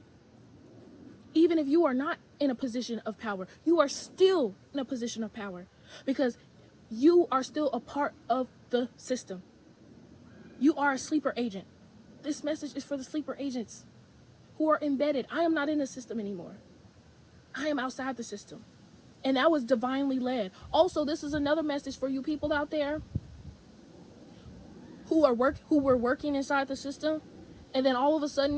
Even if you are not in a position of power, you are still in a position of power because You are still a part of the system. You are a sleeper agent. This message is for the sleeper agents who are embedded. I am not in the system anymore. I am outside the system. And that was divinely led. Also, this is another message for you people out there who were working inside the system and then all of a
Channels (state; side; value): identical; both; correlation 1.00